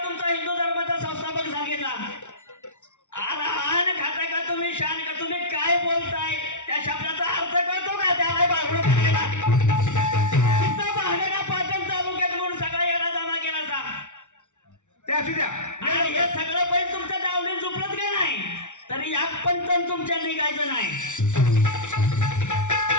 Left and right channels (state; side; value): late; right; 0.85 ms